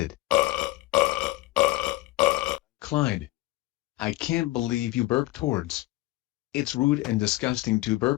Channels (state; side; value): quieter; right; 18.4 dB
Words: Clyde. I can't believe you burped towards. It's rude and disgusting to